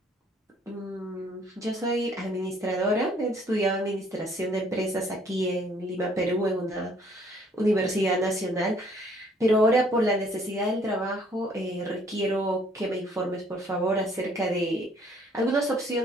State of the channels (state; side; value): normal; both; correlation 0.61